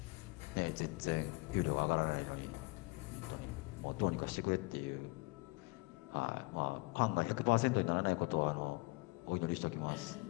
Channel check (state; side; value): quieter; right; 25.1 dB